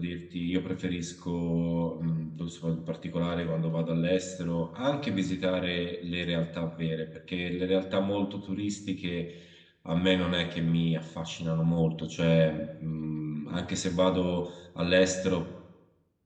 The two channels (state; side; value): identical; both; correlation 1.00